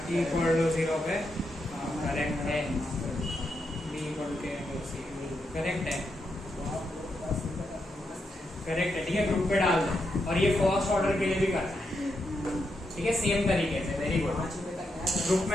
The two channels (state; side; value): normal; both; correlation 0.83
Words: equal to zero पे करेक्ट है, B equal to C correct है, करेक्ट है। ठीक है, ग्रुप पे डाल दो और ये फर्स्ट ऑर्डर के लिए भी करना है। ठीक है, सेम तरीके से। वेरी गुड, ग्रुप